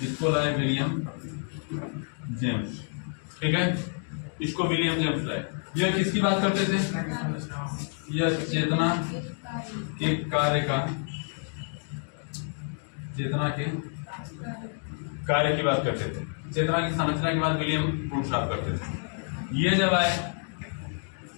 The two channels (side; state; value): right; silent; 59 dB below the other